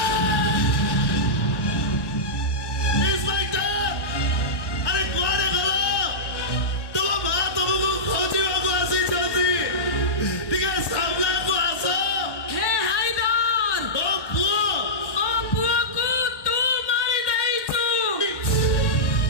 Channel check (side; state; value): right; late; 1.1 ms